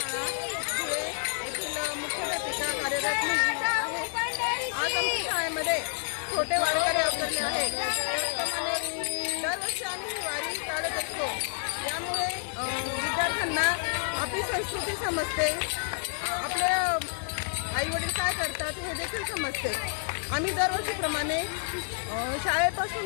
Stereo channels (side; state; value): right; silent; 58 dB below the other